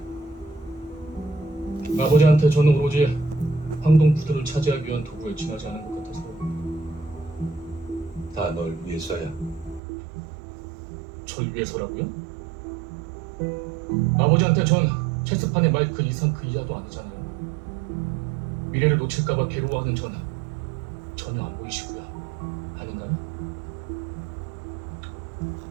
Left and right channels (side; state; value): left; drops out; at 9.8 s